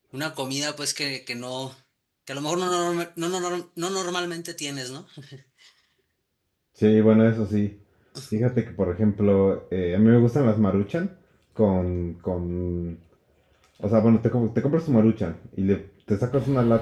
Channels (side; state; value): both; identical; correlation 1.00